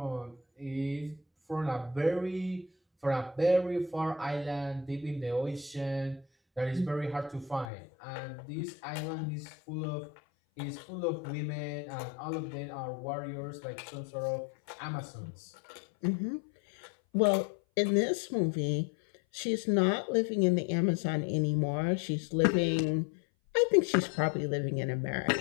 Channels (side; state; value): right; drops out; at 7.7 s